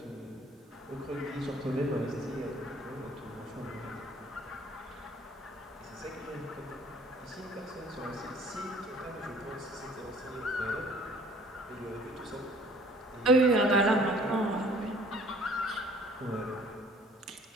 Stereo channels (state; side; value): normal; both; correlation 0.54